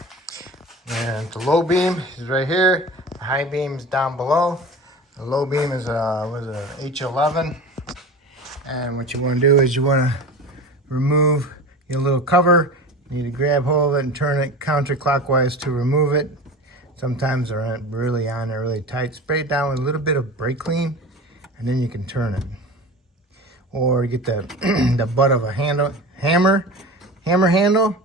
And the low beam is right here. The high beam is down below. The low beam is a H11. And what you want to do is you want to remove your little cover. You need to grab hold of it and turn it counterclockwise to remove it. Sometimes they're really on there, really tight. Spray it down with a little bit of brake clean, and then you can turn it. Or get the the butt of a hammer handle,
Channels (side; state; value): both; normal; correlation 0.33